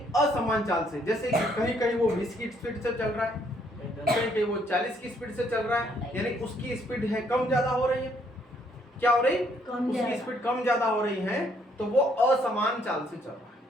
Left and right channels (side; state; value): both; normal; correlation 0.68